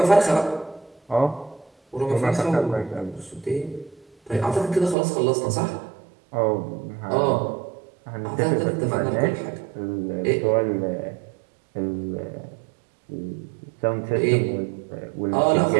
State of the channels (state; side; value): drops out; left; at 5.0 s